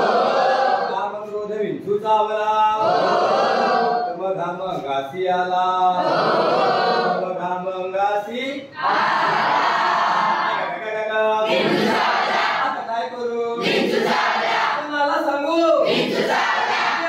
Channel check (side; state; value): both; identical; correlation 1.00